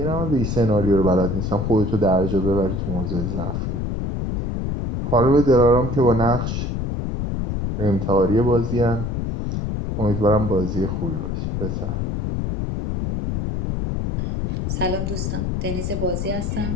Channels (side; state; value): left; noise; rumble, 2 dB below the sound